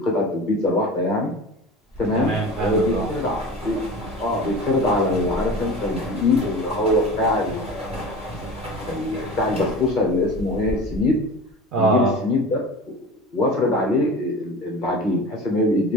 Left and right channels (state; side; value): normal; both; correlation 0.35